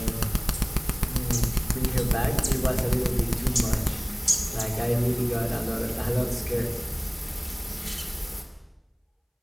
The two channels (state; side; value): identical; both; correlation 1.00